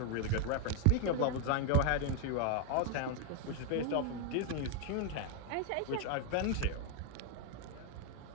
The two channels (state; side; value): different; both; correlation 0.01